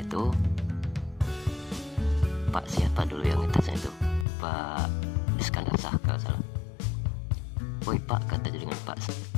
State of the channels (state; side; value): drops out; right; at 4.2 s